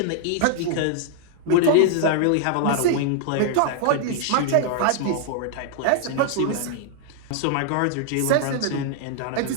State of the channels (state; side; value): different; both; correlation -0.01